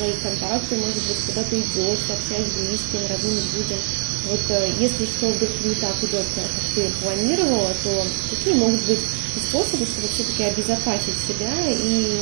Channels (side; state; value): left; quieter; 38.6 dB